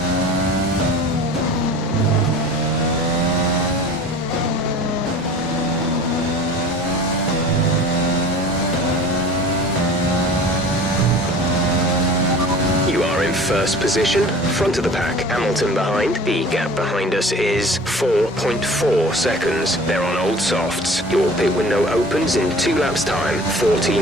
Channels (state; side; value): normal; both; correlation 0.42